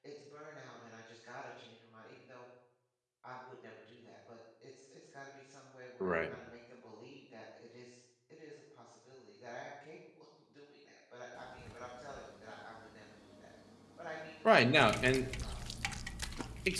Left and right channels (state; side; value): identical; both; correlation 1.00